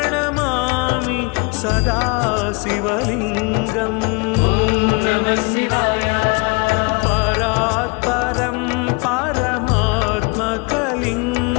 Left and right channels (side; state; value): right; quieter; 30.2 dB